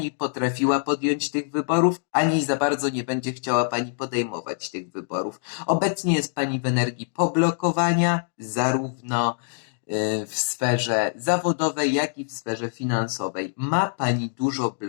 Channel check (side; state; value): right; silent; digital silence